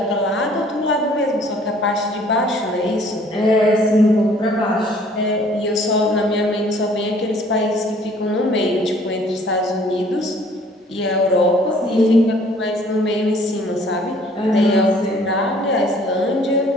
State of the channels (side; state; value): both; normal; correlation 0.57